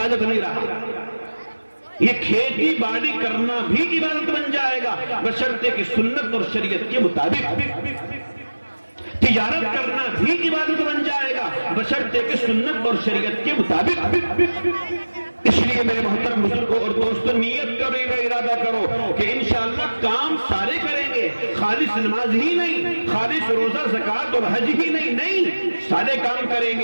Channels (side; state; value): both; inverted; correlation -1.00